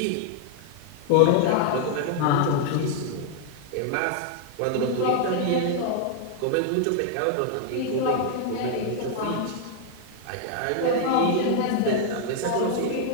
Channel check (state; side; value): different; both; correlation 0.00